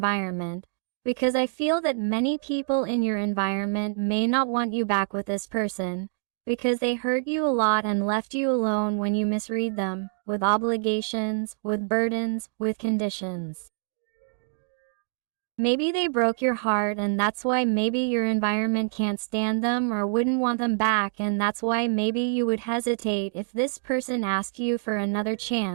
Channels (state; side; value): silent; left; digital silence